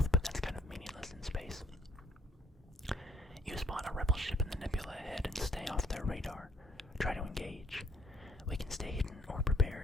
but that's kind of meaningless in space. You spot a rebel ship in the nebula ahead and stay off their radar. Try to engage. We can stay hidden or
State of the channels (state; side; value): normal; both; correlation 0.66